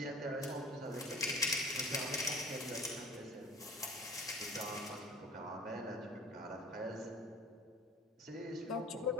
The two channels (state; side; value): normal; both; correlation 0.45